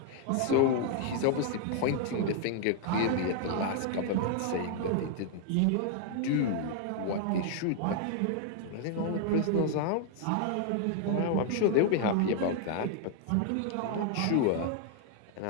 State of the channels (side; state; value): both; different; correlation 0.00